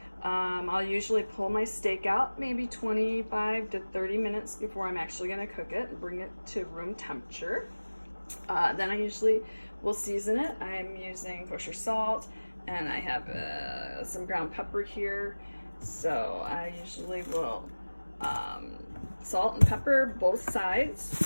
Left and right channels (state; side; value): inverted; both; correlation -1.00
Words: I'll usually pull my steak out maybe 25 to 30 minutes before I'm actually going to cook it and bring it to room temperature. Then I usually will season it. I'm using kosher salt, and I have some ground pepper here. So I usually will salt and pepper both